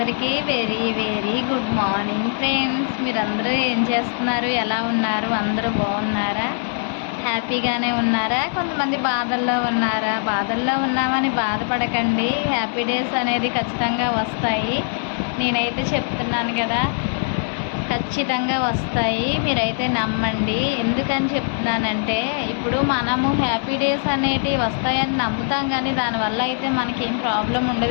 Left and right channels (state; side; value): silent; right; 65 dB below the other